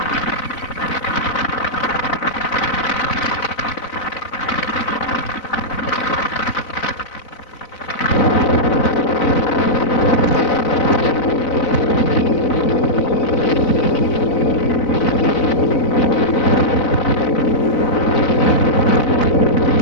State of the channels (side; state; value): right; late; 4.0 ms